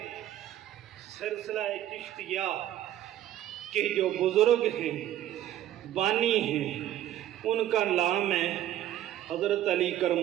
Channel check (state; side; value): quieter; left; 12.6 dB